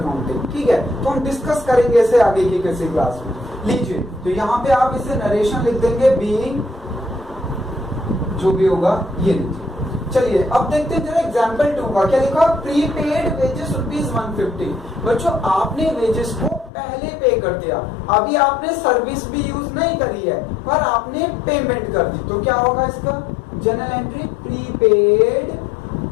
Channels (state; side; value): drops out; right; at 16.7 s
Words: ठीक है। तो हम डिस्कस करेंगे इसे आगे की किसी क्लास में। लीजिए तो यहाँ पे आप इसे नरेशन लिख देंगे, बीइंग जो भी होगा, ये लीजिए। चलिए अब देखते हैं जरा एग्जांपल 2 का क्या लिखा, प्रीपेड वेजेस रुपीज 150। बच्चों आपने वेजेस को पहले पे कर दिया, अभी आपने सर्विस भी यूज नहीं करी है, पर आपने पेमेंट कर दी, तो क्या होगा इसका general entry,